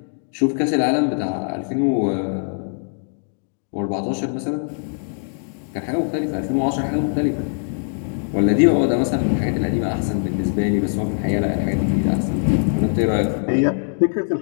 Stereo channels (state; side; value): silent; right; digital silence